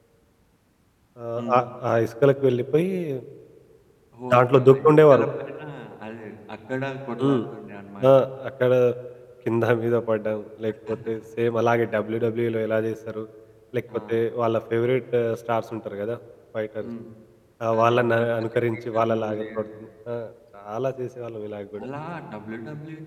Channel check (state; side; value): identical; both; correlation 1.00